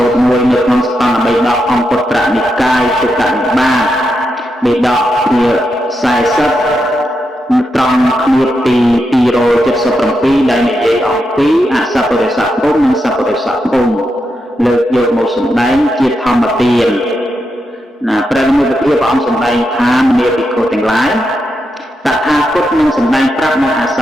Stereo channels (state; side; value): normal; both; correlation 0.85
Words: ូតមួយនៅក្នុងស្ថានបិដកអង្គពុត្រនិកាយទុក្កនិបាតបិដកជា40ត្រង់គ្នាទី277ដែលនិយាយអំពីអសពរិស័ភូមិនិងសពរិស័ភូមិលើកយកមកសម្ដែងជាធម្មទានណាព្រះនិមិត្តភាពព្រះអង្គសម្ដែងថាមនាភិក្ខុទាំងឡាយតថាគតនឹងសម្ដែងប្រាប់នៅអស